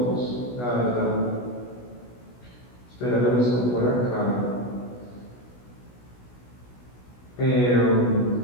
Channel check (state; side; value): late; right; 16 ms